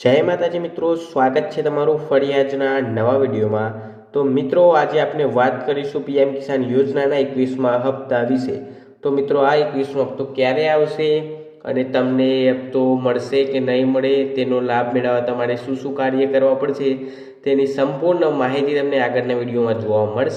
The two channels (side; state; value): both; identical; correlation 1.00